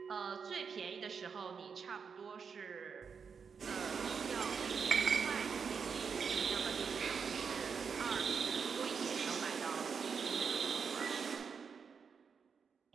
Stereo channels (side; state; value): left; quieter; 6.1 dB